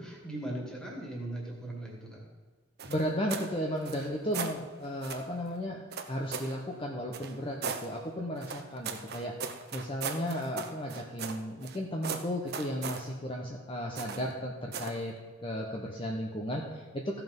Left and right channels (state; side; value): normal; both; correlation 0.46